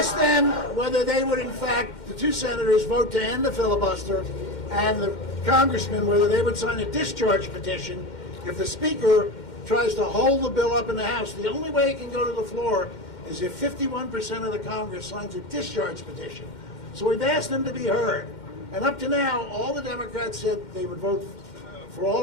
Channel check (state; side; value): late; right; 2.1 ms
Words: them whether they would, in fact, the 2 senators vote to end the filibuster, and the congressmen whether they would sign a discharge petition if the speaker tries to hold the bill up in the House. The only way it can go to the floor is if 51% of the Congress signs a discharge petition. So we've asked them to be heard. And up to now, all the Democrats said they would vote for